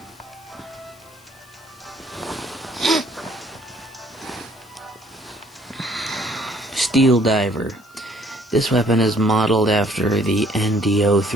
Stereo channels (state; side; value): noise; left; hiss, 27 dB below the sound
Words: Steel Diver. This weapon is modeled after the